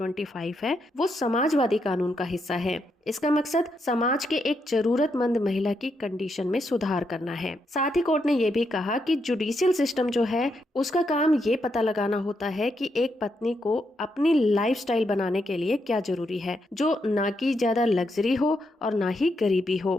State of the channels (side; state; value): both; normal; correlation 0.80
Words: है वो समाजवादी कानून का हिस्सा है। इसका मकसद समाज के एक जरूरतमंद महिला की कंडीशन में सुधार करना है। साथ ही कोर्ट ने यह भी कहा कि जुडिशियल सिस्टम जो है उसका काम ये पता लगाना होता है कि एक पत्नी को अपनी लाइफस्टाइल बनाने के लिए क्या जरूरी है, जो ना कि ज्यादा लग्जरी हो और ना ही गरीबी